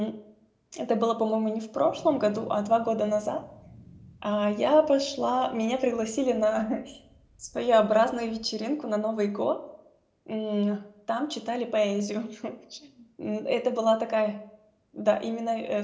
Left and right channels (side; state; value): both; identical; correlation 1.00